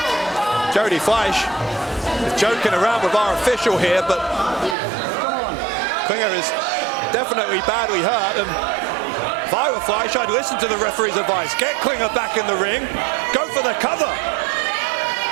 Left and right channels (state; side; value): drops out; left; at 4.8 s